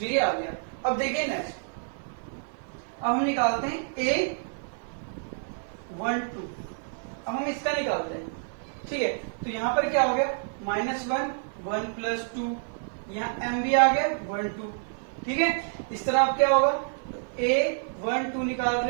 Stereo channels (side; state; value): left; silent; digital silence